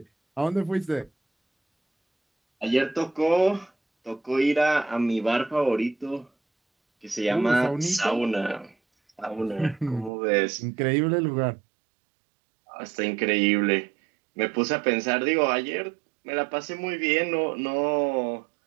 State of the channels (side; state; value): left; drops out; at 10.1 s